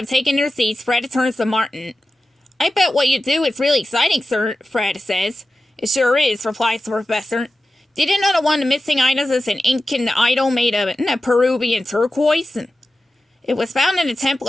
taken their seats, Fred turns to Martin. I bet what you do is really exciting, sir, Fred says. It sure is, replies the professor. Did you know that one of the missing items is an Incan idol made of Peruvian turquoise? It was found in a temple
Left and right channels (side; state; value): both; normal; correlation 0.93